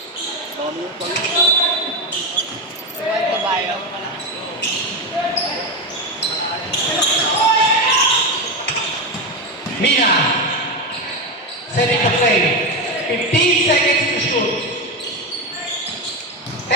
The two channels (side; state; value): both; normal; correlation 0.14